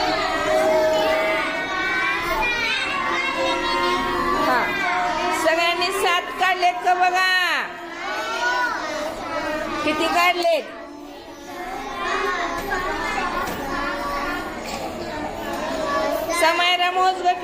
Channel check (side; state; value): both; identical; correlation 1.00